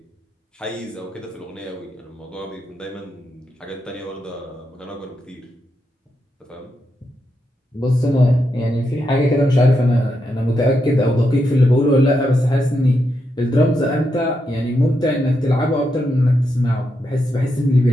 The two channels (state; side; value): normal; both; correlation 0.83